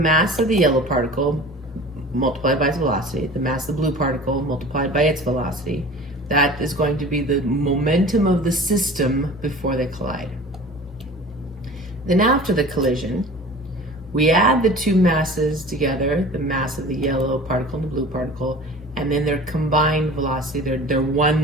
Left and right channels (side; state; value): both; normal; correlation 0.41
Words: of the yellow particle multiplied by its velocity, the mass of the blue particle multiplied by its velocity, that is going to be the momentum of the system before they collide. Then after the collision, we add the two masses together, the mass of the yellow particle and the blue particle, and then their combined velocity, their